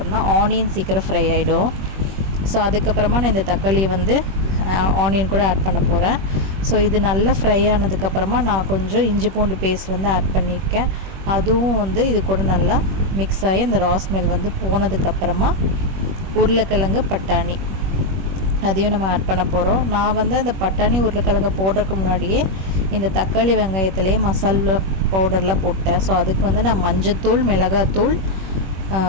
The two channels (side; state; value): left; late; 21 ms